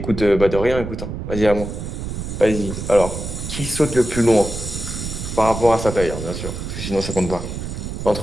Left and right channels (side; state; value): right; noise; rumble, 6 dB below the sound